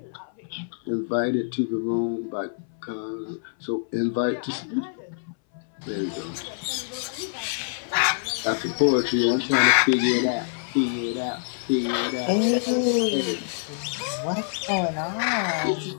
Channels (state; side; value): silent; right; 60 dB below the other